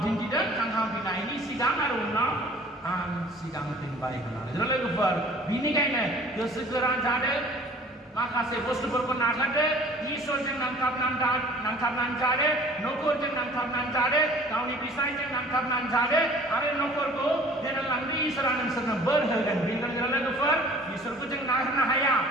दिन्थिदों थांखांफिननायनि सिगां आरो उनाव आं सिगांफिनबाय होननानै लोगोफोर बेनिखायनो गोसो गोरा जादों माखासे बुस्थुफोरखौ नागारदो इसोरजों नांथाबनानै जादो न'खरजों नांथाबनानै जादो गावनि बिसायजों नांथाबनानै जादो आरो न'खरखौ दैदेनलांनो इसोरा नोंसोरनो बोर होगोन बेनिखायनो लोगोफोर इसोरखौ जों नागारनो हाया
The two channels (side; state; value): both; normal; correlation 0.49